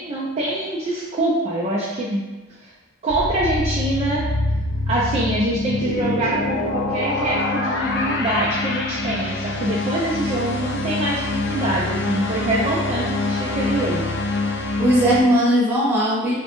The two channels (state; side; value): normal; both; correlation 0.44